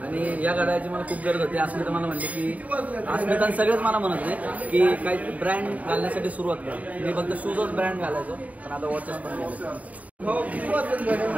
आणि या घड्याळाची मला खूप गरज होती. अस्मिता मला म्हणते की अस्मिता सगळेच मला म्हणत होते की काही ब्रँड घालण्यासाठी सुरुवात कर. मी फक्त शूजच ब्रँड घालायचो पण आता वॉचेस पण घालायचो.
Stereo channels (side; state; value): left; late; 0.071 ms